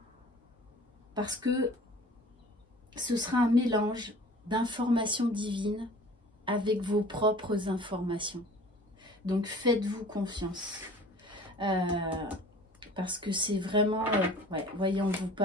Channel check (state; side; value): normal; both; correlation 0.46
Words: Parce que ce sera un mélange d'informations divines avec vos propres informations. Donc faites-vous confiance. Parce que c'est vraiment, ouais, voyez, on vous